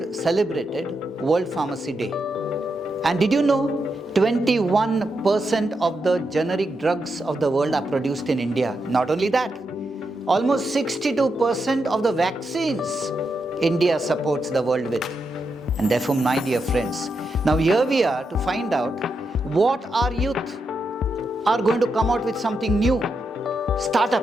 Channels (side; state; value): both; normal; correlation 0.84